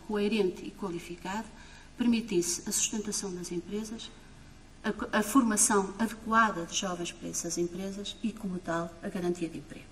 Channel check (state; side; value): identical; both; correlation 1.00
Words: coerente e qualificado, permitisse a sustentação das empresas, a formação adequada de jovens para essas empresas e, como tal, a garantia de emprego.